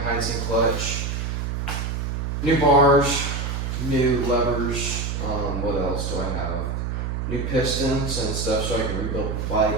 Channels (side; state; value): right; noise; hum, 2 dB below the sound